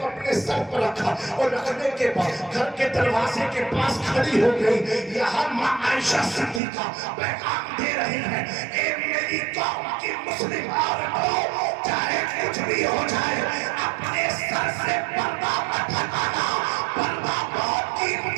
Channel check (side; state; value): left; drops out; at 6.6 s